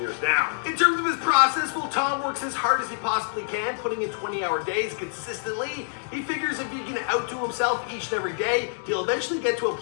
now. In terms of his process, well, Tom works as hard as he possibly can, putting in 20-hour days consistently. He figures if he can outdo himself each and every day, he'll eventually get to a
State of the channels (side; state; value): right; silent; digital silence